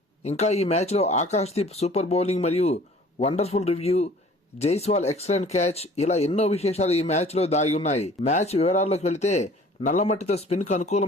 ఇంకా ఈ మ్యాచ్లో ఆకాశ్దీప్ సూపర్ బౌలింగ్ మరియు wonderful review, Jaiswal excellent catch, ఇలా ఎన్నో విశేషాలు ఈ మ్యాచ్లో దాగి ఉన్నాయి. మ్యాచ్ వివరాల్లోకి వెళితే నల్లమట్టితో స్పిన్కు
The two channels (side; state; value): both; normal; correlation 0.50